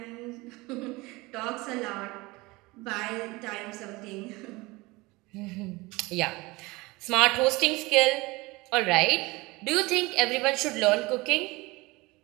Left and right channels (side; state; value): left; quieter; 22.6 dB